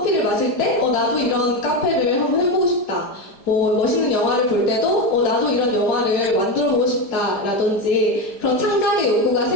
마실 때, 나도 이런 카페를 한번 해보고 싶다. 멋있는 영화를 볼 때도 나도 이런 영화를 만들어보고 싶다 라든지 그런 창작의 욕구가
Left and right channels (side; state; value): right; late; 5.0 ms